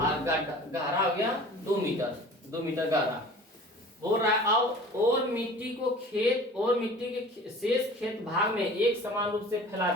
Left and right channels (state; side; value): normal; both; correlation 0.43